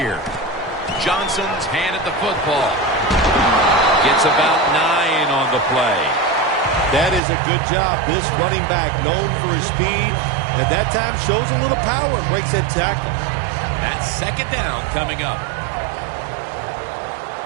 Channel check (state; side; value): drops out; left; at 7.2 s